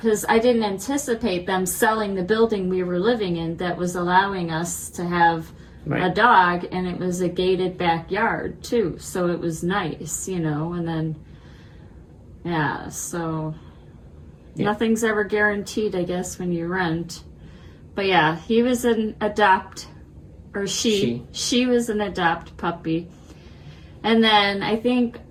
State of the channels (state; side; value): identical; both; correlation 1.00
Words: I didn't anticipate them selling the building we were living in that was allowing us to have a dog, and it was a gated backyard too, so it was nice, you know. And then so nothing's ever guaranteed, I guess, when you rent. But yeah, he was an she was an adopt puppy. And then I think